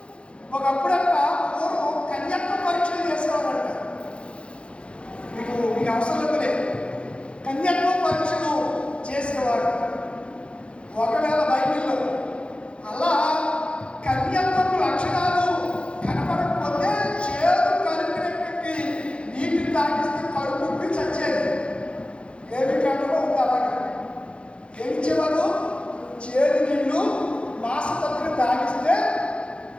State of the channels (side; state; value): right; late; 0.058 ms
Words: ఒకప్పుడంట పూర్వం కన్యత్వ పరీక్షలు చేసేవారంట. మీకు అవసరం లేదు. కన్యత్వ పరీక్షలు చేసేవారు. ఒకవేళ బైబిల్లో అలా కన్యత్వపు లక్షణాలు కనపడకపోతే చేదు కలిపినటువంటి నీటిని తాగిస్తే కడుపు చచ్చేది. ఏమి కాలంలో ఉంది అలాగా. ఏమిచ్చేవారు? చేదు నీళ్ళు మాసపత్రి తాగిస్తే